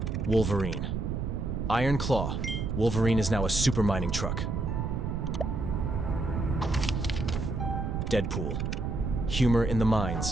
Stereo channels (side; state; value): right; noise; rumble, 2 dB below the sound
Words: Wolverine. Iron Claw. Wolverine is now a super mining truck. Deadpool. Humor in the